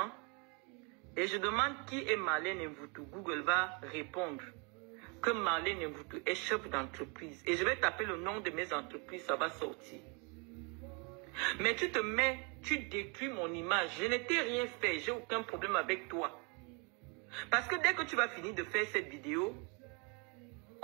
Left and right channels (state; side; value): quieter; left; 32.8 dB